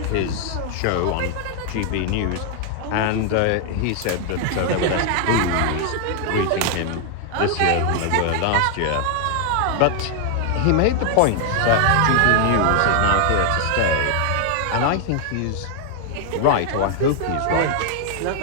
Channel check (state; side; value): different; both; correlation 0.00